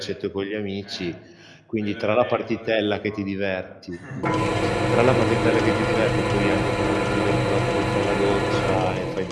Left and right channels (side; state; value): both; identical; correlation 1.00